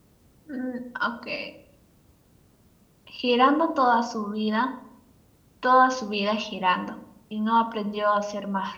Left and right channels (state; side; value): identical; both; correlation 1.00